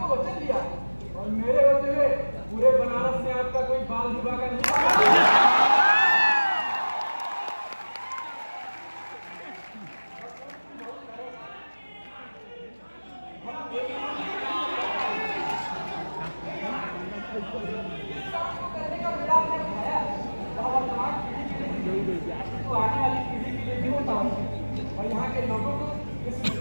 वचन दिया और मेरे होते हुए पूरे बनारस में आपका कोई बाल विवाह का नहीं। आने वाली पीढ़ी के लिए भी होता है और यहाँ के लोगों को इस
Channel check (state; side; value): inverted; both; correlation -1.00